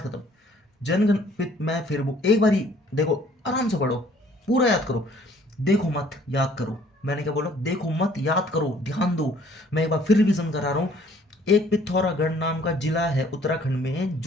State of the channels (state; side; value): normal; both; correlation 0.58